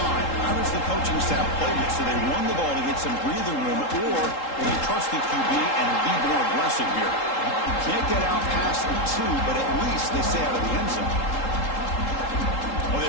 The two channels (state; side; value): late; right; 3.8 ms